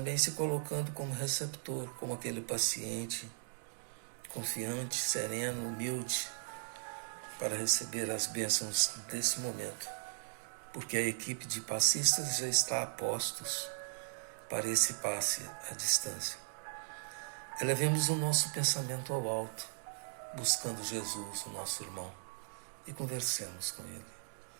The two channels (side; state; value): left; silent; digital silence